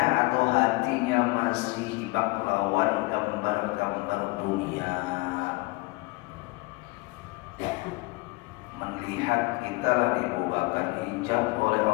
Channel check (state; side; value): quieter; right; 24.1 dB